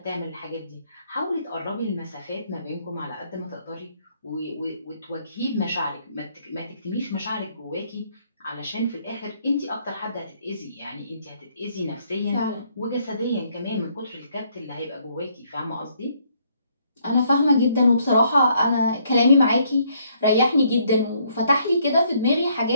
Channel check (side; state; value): both; inverted; correlation -0.69